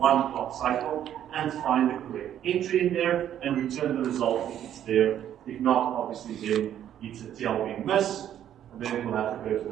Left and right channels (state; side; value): quieter; left; 10.6 dB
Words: clock cycle and find the correct entry in there and return the result if it's there. If not, obviously then it's a TLB miss, and then it will have to go to